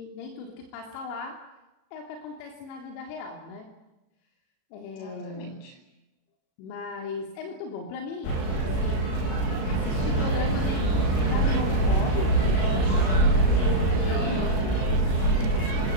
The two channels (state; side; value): late; right; 37 ms